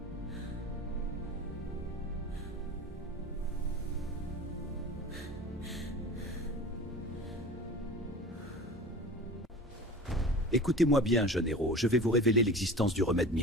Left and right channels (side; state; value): both; normal; correlation 0.36